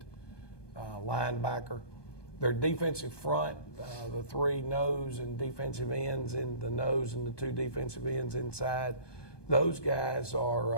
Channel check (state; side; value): late; right; 1.2 ms